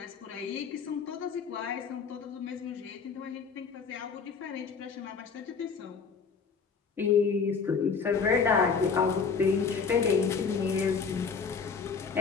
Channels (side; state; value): right; quieter; 5.5 dB